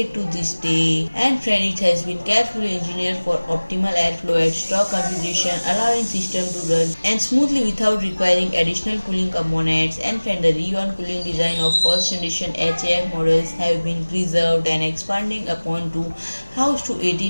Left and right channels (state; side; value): inverted; both; correlation -1.00